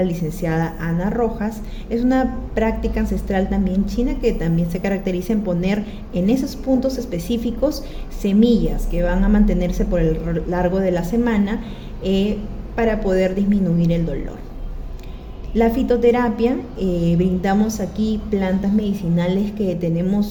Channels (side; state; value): both; identical; correlation 1.00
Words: licenciada Ana Rojas, es una práctica ancestral también china que también se caracteriza en poner en esos puntos específicos semillas que van a mantenerse por el largo de la semana para poder disminuir el dolor. La fitoterapia, brindamos aquí plantas medicinales que